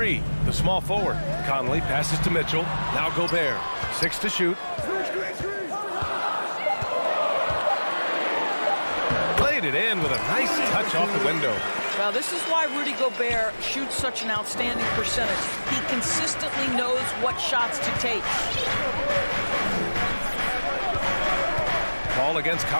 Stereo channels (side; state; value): both; inverted; correlation -1.00